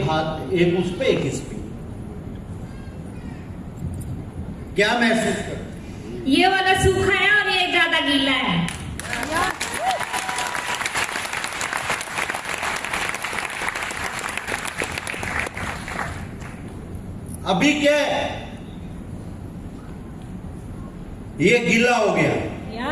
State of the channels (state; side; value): identical; both; correlation 1.00